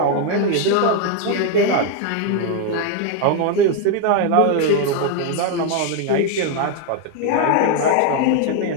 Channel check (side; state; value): both; different; correlation 0.01